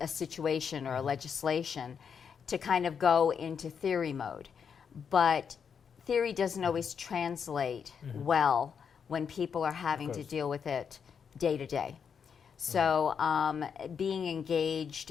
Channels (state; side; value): quieter; right; 6.8 dB